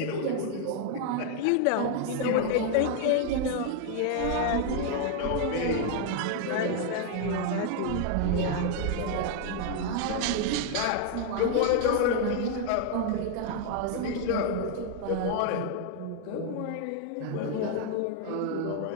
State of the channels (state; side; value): different; both; correlation 0.00